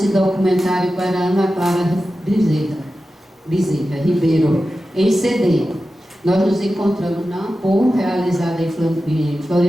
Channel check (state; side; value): normal; both; correlation 0.93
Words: documentário para Ana Clara Bezerra Ribeiro, em CD. Nós nos encontramos na AMPO, realizada em